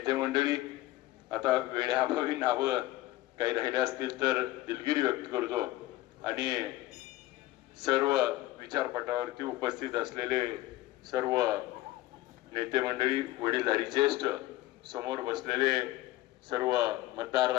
मंडळी. आता वेळेअभावी नावं काही राहिले असतील तर दिलगिरी व्यक्त करतो आणि सर्व विचारपटावरती उपस्थित असलेले सर्व नेते मंडळी, वडीलधारी ज्येष्ठ, समोर बसलेले सर्व मतदार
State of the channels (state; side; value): quieter; right; 17.0 dB